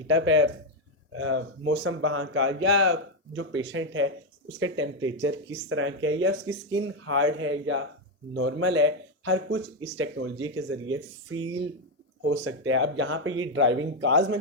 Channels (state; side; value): normal; both; correlation 0.05